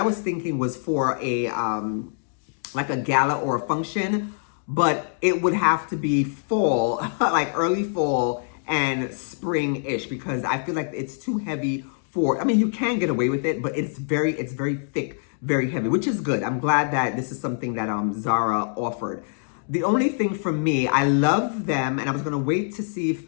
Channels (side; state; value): right; silent; digital silence